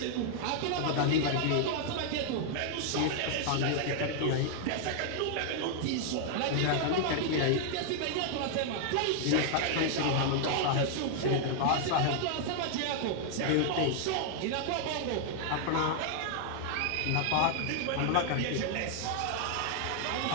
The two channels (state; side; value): different; both; correlation 0.00